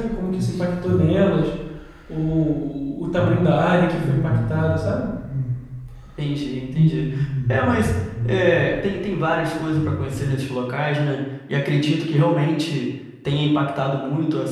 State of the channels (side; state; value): both; identical; correlation 1.00